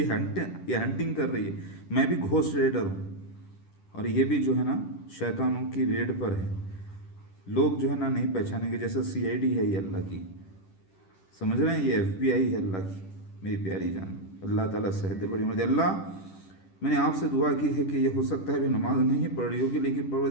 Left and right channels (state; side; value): late; right; 10 ms